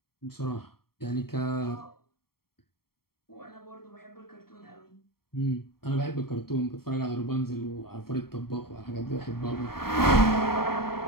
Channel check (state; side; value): late; right; 0.94 ms